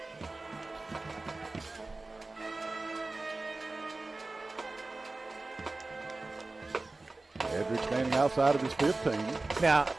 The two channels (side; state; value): left; quieter; 3.2 dB